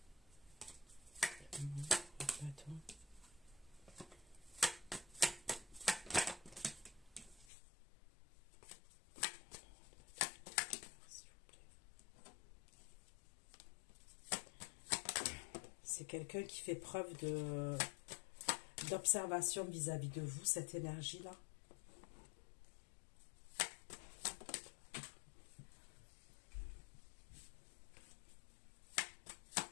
C'est quelqu'un qui fait preuve d'observation vis-à-vis de vous, cette énergie-là.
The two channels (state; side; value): drops out; right; at 7.5 s